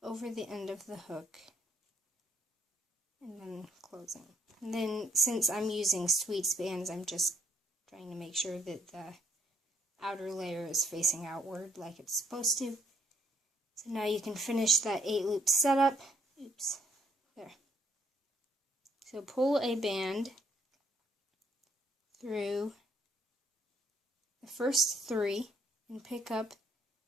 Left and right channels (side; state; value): both; normal; correlation 0.67